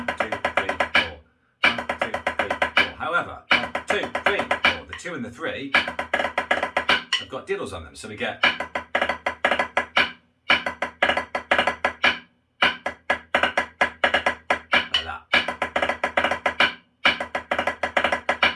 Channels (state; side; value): identical; both; correlation 1.00